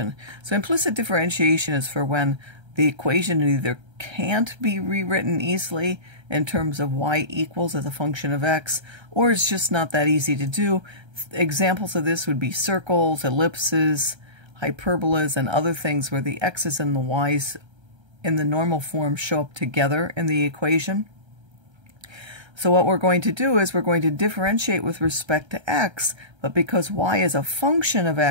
So implicit differentiation is for when the equation either can't be rewritten easily in terms of y equals as a function of x, or it's just not that easy to do. Examples of this would be circles, ellipses, hyperbolas, and other things where the x's and the y's in the normal form show up together in the equation. So what we're going to do is we're going to differentiate with respect to x, but because y is a function of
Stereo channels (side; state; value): left; late; 1.3 ms